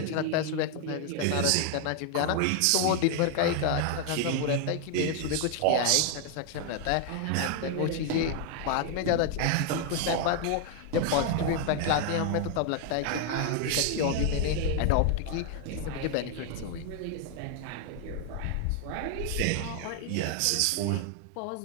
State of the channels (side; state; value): both; different; correlation 0.00